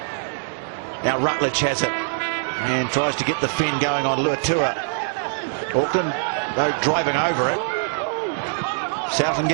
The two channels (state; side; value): silent; left; 63 dB below the other